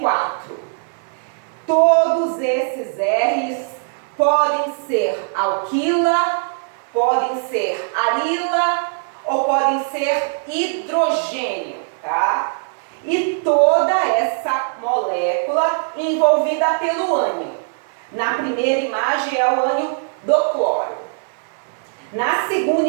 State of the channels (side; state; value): left; silent; digital silence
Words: Todos esses R's podem ser alquila, podem ser arila ou podem ser hidrogênio, tá? E toda essa molécula envolvida pelo ânion. Na primeira imagem é o ânion do cloro. Na segunda